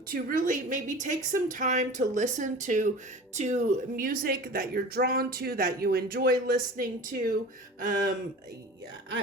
really maybe take some time to listen to music that you're drawn to, that you enjoy listening to.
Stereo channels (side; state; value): both; normal; correlation 0.38